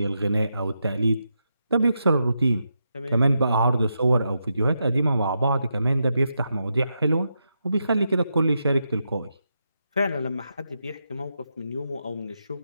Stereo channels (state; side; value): inverted; both; correlation -0.84